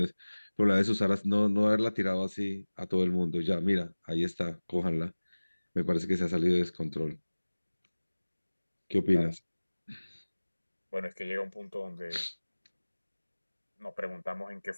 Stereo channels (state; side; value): inverted; both; correlation -1.00